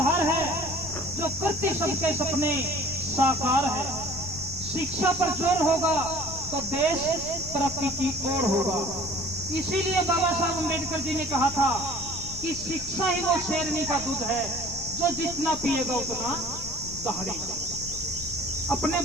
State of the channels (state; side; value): noise; left; rumble, 13 dB below the sound